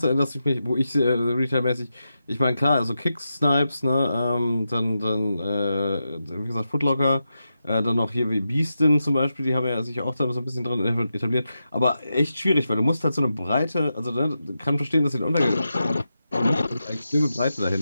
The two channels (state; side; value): inverted; both; correlation -0.89